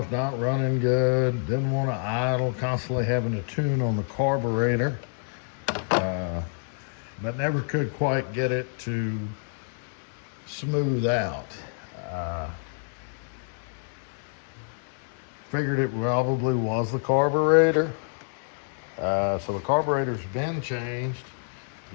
not running good, didn't want to idle, constantly having to tune on the carburetor, but never could quite get it to smooth out. Figured it probably was the carburetor. So the carburetor's been changed.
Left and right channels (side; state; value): right; silent; digital silence